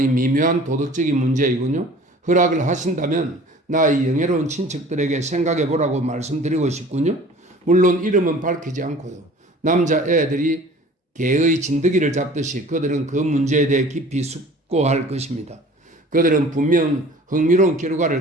미묘한 도덕적인 문제이군요. 허락을 하신다면 나의 영예로운 친척들에게 생각해 보라고 말씀드리고 싶군요. 물론 이름은 밝히지 않고요. 남자 애들이 개의 진드기를 잡듯이 그들은 그 문제에 대해 깊이 숙고할 것입니다. 그들은 분명 흥미로운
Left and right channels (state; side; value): normal; both; correlation 0.46